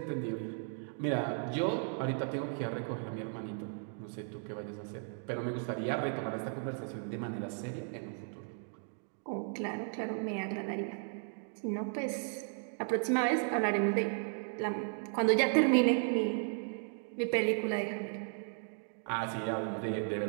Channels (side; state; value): left; silent; 54 dB below the other